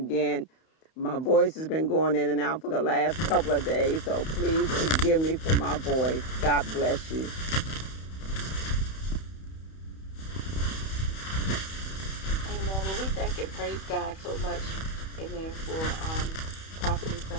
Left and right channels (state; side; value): late; right; 31 ms